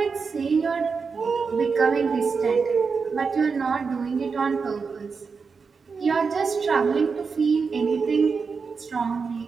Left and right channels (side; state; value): left; quieter; 5.2 dB